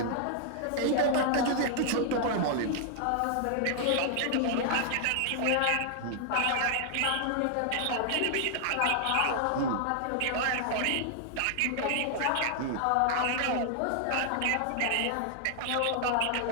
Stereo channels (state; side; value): different; both; correlation 0.00